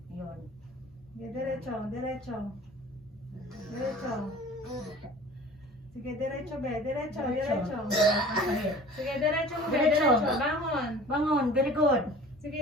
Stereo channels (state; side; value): normal; both; correlation 0.44